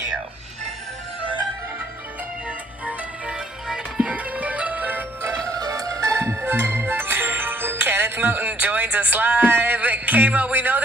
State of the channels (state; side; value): normal; both; correlation 0.64